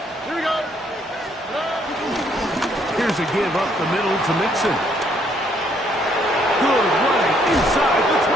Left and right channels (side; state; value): both; normal; correlation 0.68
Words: Here we go. Here's a give up the middle to Mixon. Good running inside the